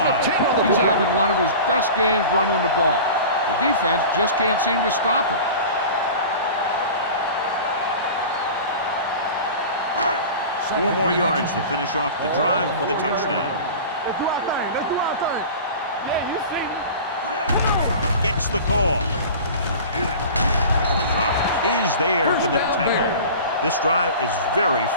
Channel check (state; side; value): inverted; both; correlation -0.37